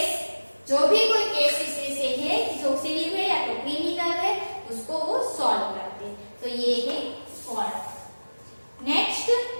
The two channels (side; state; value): both; inverted; correlation -1.00